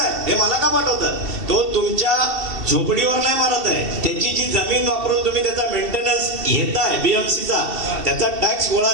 हे मला का पाठवतात? तो तुमच्या झोपडीवर नाही मारत आहे, त्याची जी जमीन वापरून तुम्ही त्याचा मेंटेनन्स घेताय बीएमसीचा, त्याचा टॅक्स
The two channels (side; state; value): left; late; 2.7 ms